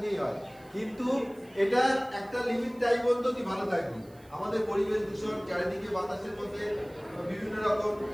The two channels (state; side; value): noise; right; hiss, 29 dB below the sound